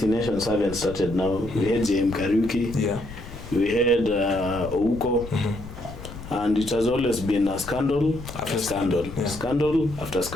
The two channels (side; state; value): left; noise; rumble, 13 dB below the sound